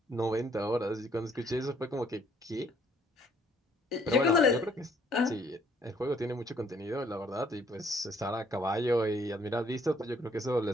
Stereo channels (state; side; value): normal; both; correlation 0.64